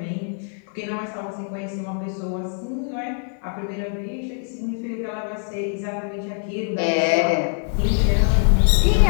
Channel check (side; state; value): right; silent; 56 dB below the other